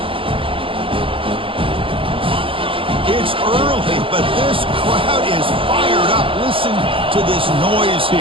It's early, but this crowd is fired up. Listen to this noise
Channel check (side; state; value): left; late; 0.26 ms